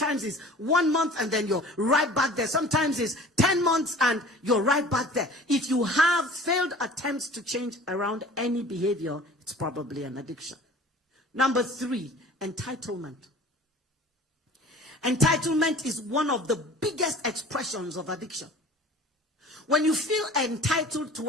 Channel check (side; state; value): both; normal; correlation 0.45